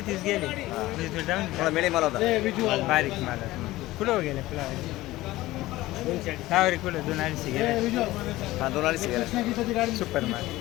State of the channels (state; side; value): quieter; right; 17.5 dB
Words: गेले. म्हणजे तो डाऊन मला मिळे मला होता बारीक माला कुठं गेले फ्लावर? फ्लावर कुठं 2-250 गेले. हा 2 गेला सुपर माल.